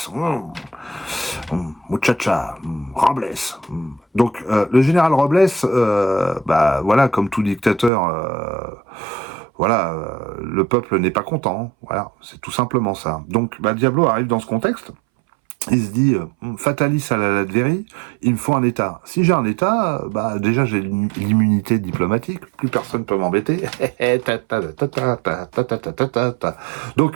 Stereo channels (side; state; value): left; drops out; at 7.9 s